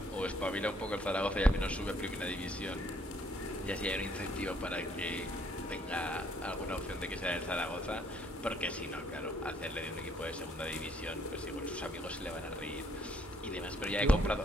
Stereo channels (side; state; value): both; normal; correlation 0.66